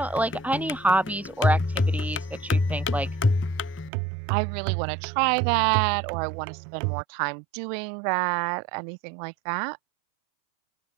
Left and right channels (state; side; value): drops out; left; at 3.9 s